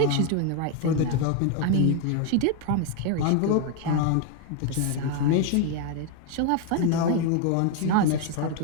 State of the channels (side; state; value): both; different; correlation 0.01